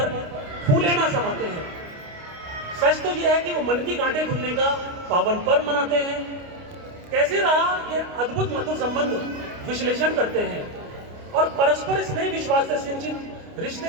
फूले ना समाते हैं। सच तो यह है कि वो मन की गांठें खुलने का पावन पर्व मनाते हैं। कैसे रहा ये अद्भुत मधुर संबंध विश्लेषण करते हैं और परस्पर स्नेह विश्वास से सिंचित रिश्ते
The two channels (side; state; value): left; late; 29 ms